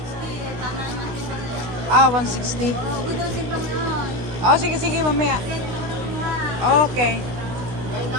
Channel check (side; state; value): left; late; 16 ms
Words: 160. Oh, sige, mamaya. Okay.